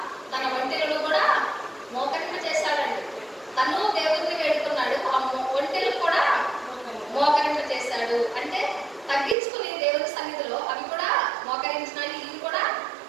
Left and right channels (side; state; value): left; drops out; at 9.3 s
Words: తన వంటెలను కూడా మోకరింప చేశాడండి. తను దేవుడిని వేడుకున్నాడు, ఆ వంటెలు కూడా మోకరింప చేశాడు. అంటే తగ్గించుకుని దేవుని సన్నిధిలో అవి కూడా మోకరించినాయి. ఇవి కూడా